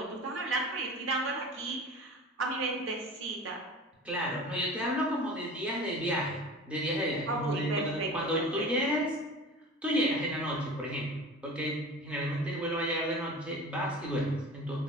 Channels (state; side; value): normal; both; correlation 0.37